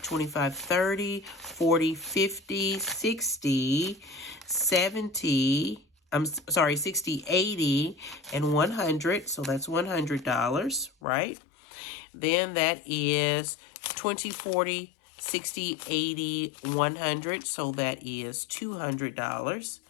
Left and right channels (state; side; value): drops out; right; at 10.9 s